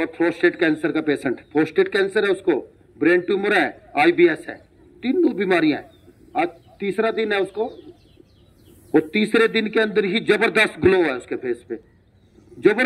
प्रोस्टेट कैंसर का पेशेंट। प्रोस्टेट कैंसर है उसको, ब्रेन ट्यूमर है, IBS है, तीनों बीमारियां हैं। आज तीसरा दिन है उसको, और तीसरे दिन के अंदर ही जबरदस्त ग्लो है उसके फेस पे।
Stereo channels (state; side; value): identical; both; correlation 1.00